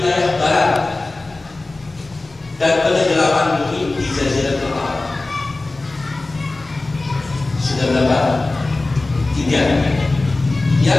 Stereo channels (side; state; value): right; quieter; 3.1 dB